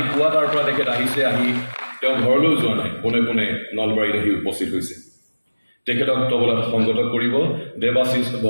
পুৱা তাৰ পৰা তেখেত আহিছে। আহি তেওঁ ঘৰলৈও যোৱা নাই, পোনে পোনে নলবাৰীত আহি উপস্থিত হৈছে। তেখেতক তবলাত সংগত কৰিব দেৱাশিষ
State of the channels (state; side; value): inverted; both; correlation -1.00